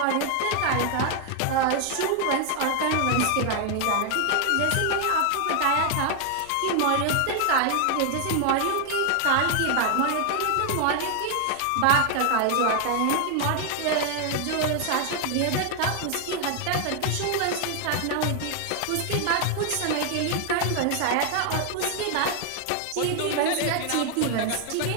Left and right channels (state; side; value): different; both; correlation 0.00